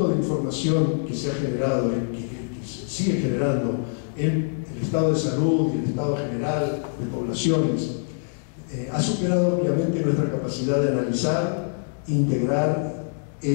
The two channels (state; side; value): silent; right; digital silence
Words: de información que se ha generado, que se sigue generando en el estado de salud y el estado general de poblaciones, ha superado obviamente nuestra capacidad de analizar, integrar e